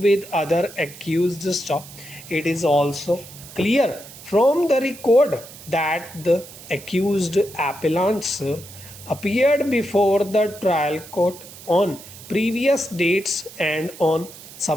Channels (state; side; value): noise; right; hiss, 17 dB below the sound